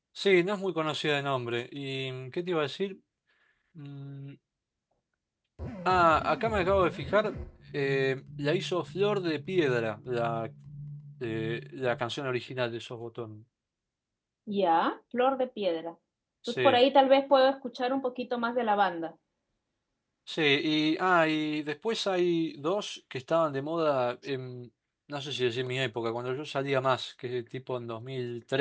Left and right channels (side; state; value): both; identical; correlation 1.00